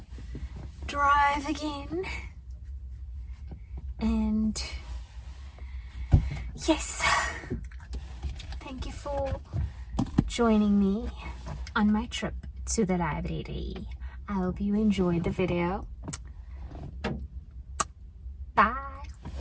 drive again. And yes, thank you for joining me on my trip to the library. I hope you enjoyed the video. Bye.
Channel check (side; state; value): both; identical; correlation 1.00